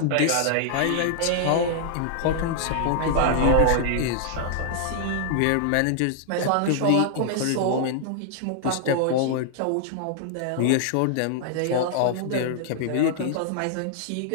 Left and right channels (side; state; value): both; different; correlation -0.01